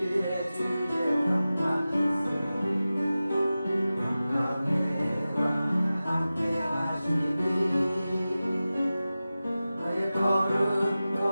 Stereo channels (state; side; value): inverted; both; correlation -0.95